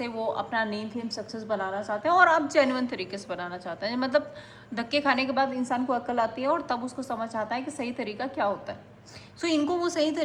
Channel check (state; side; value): identical; both; correlation 1.00